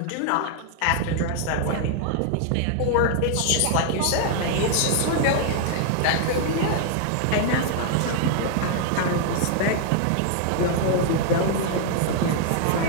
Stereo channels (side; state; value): both; different; correlation 0.00